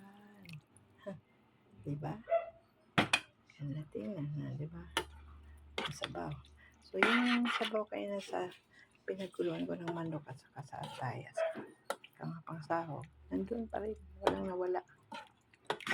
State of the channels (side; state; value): both; identical; correlation 1.00